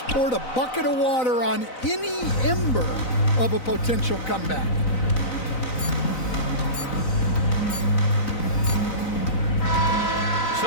a bucket of water on any ember of a potential comeback.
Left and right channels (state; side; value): late; right; 4.0 ms